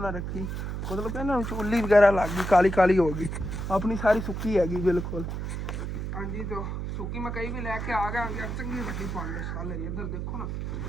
रखी मतलब कि ना उल्ली वगैरह लग गई काली काली हो गई अपनी सारी सुक्की हैगी बिल्कुल हाँ जी तो सुक्की मकई भी लैके आ गए चंगी वड्डी पंड साल इधर देखो ना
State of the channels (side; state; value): right; noise; hum, 4 dB below the sound